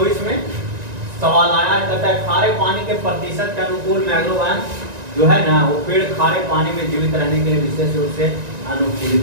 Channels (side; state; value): left; late; 1.9 ms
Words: में सवाल आया है, कहता है खारे पानी के प्रतिशत के अनुकूल मैंग्रोव वन जो है ना, वो पेड़ खारे पानी में जीवित रहने के लिए विशेष रूप से